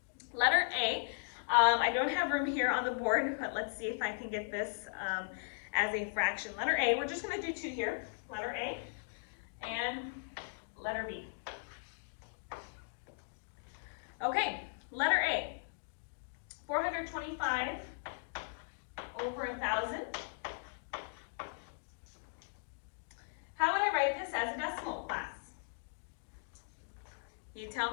Letter A, I don't have room here on the board, but let's see if I can get this as a fraction. Letter A, we're just going to do 2 here. Letter A and letter B. Okay, letter A, 425 over 1,000. How would I write this as a decimal, class? You tell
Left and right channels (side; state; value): right; silent; digital silence